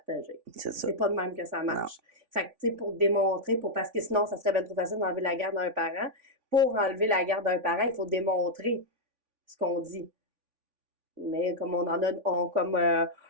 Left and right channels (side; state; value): left; late; 3.5 ms